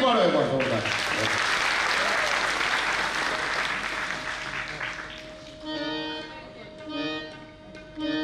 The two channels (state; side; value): identical; both; correlation 1.00